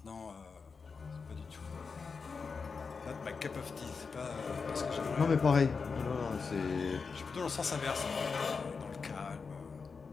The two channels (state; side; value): quieter; right; 5.1 dB